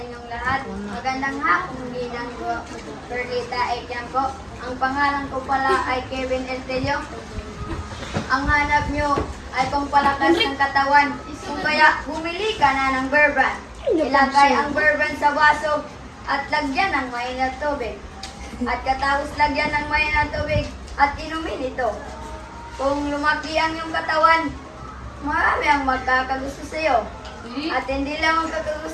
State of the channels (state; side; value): identical; both; correlation 1.00